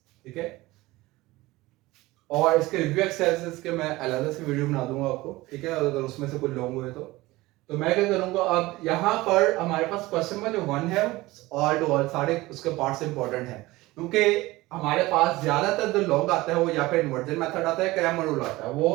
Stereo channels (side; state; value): left; quieter; 19.6 dB